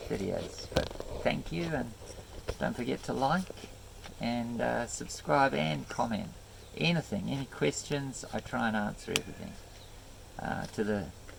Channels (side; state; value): both; identical; correlation 1.00